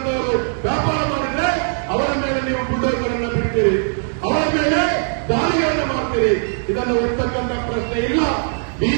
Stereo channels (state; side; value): silent; left; 66 dB below the other